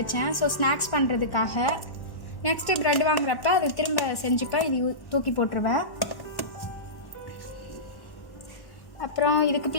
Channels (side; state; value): right; late; 1.1 ms